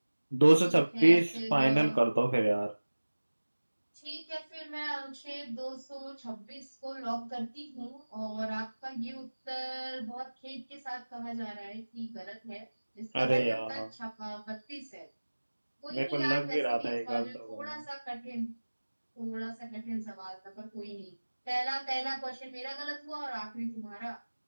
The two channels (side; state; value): both; inverted; correlation -1.00